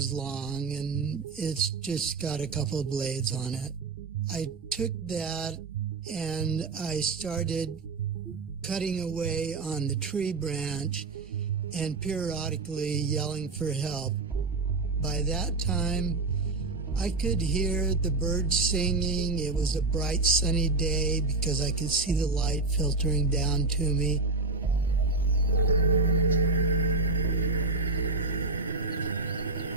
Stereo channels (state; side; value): quieter; left; 3.7 dB